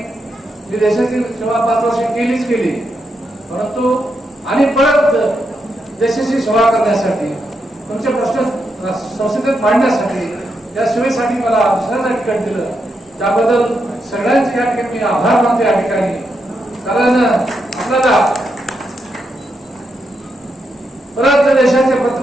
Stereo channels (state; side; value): normal; both; correlation 0.83